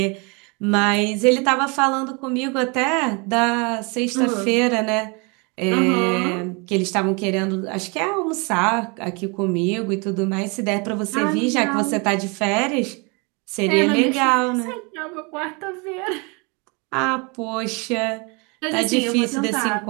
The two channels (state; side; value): quieter; left; 30.8 dB